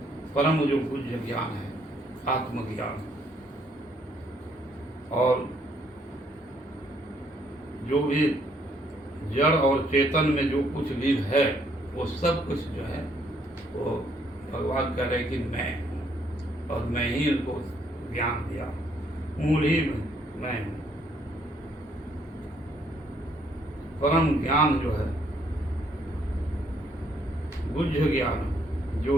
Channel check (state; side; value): normal; both; correlation 0.68